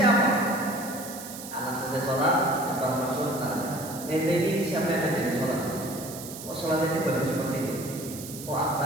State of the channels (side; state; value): right; noise; hiss, 12 dB below the sound